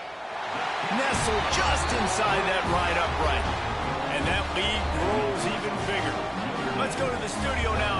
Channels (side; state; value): both; identical; correlation 1.00